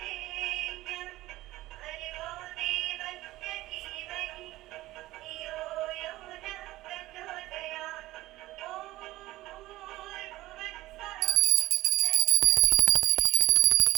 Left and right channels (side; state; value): left; quieter; 16.9 dB